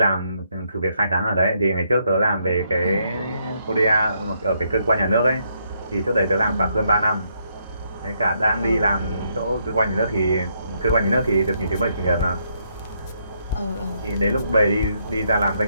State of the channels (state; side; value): inverted; both; correlation -0.75